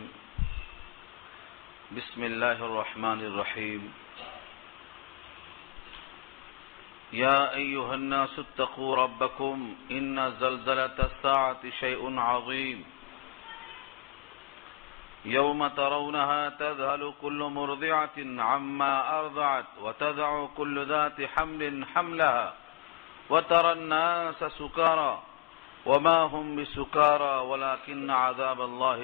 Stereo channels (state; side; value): quieter; right; 20.8 dB